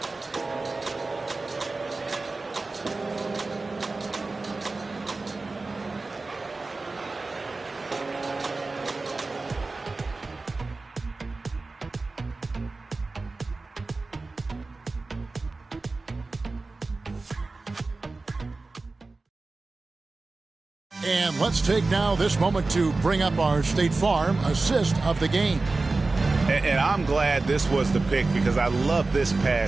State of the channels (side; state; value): left; quieter; 3.5 dB